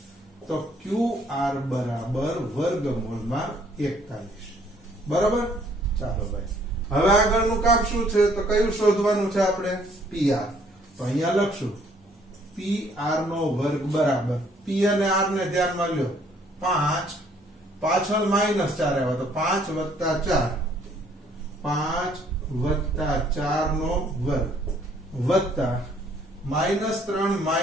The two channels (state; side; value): normal; both; correlation 0.63